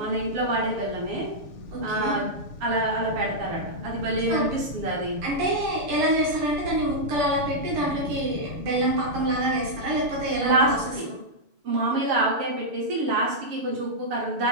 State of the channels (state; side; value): late; left; 6.9 ms